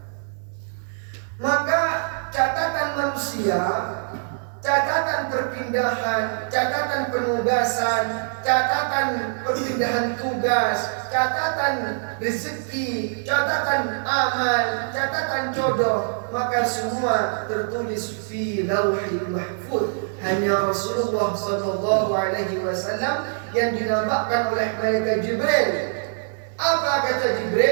Maka catatan manusia, catatan perpindahan, catatan penugasan, catatan perpindahan tugas, catatan rezeki, catatan amal, catatan jodoh, maka semua tertulis fi Lauhil Mahfuz. Hanya Rasulullah SAW yang dinamakan oleh malaikat Jibril. Apa kata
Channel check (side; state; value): left; silent; digital silence